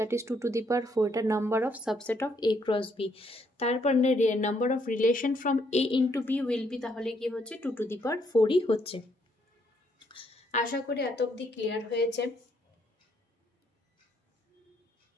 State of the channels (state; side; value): normal; both; correlation 0.72